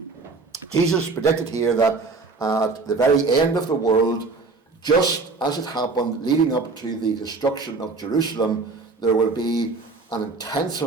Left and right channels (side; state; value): left; quieter; 4.0 dB